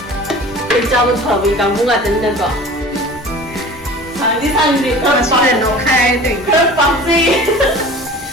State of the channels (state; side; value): normal; both; correlation 0.41